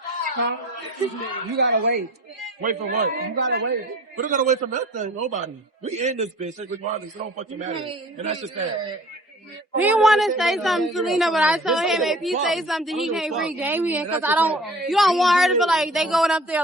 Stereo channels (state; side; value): normal; both; correlation 0.45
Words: Huh? You gotta wait. Wait for what? You gotta wait. We don't gotta wait for nothing. Nobody. We in this bitch. Regardless, it don't fucking matter. And that's just that. He want to say something to Lena, but I told him if he say something, he can't bring Damien because you don't want her to feel like they going up there